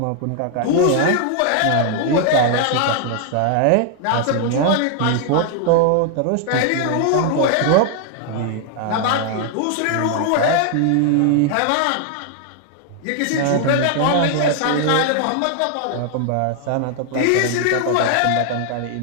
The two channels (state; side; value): different; both; correlation 0.00